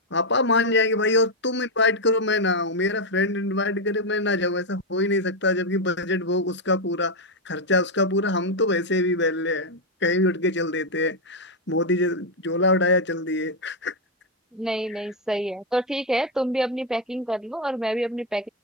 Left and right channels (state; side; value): normal; both; correlation 0.03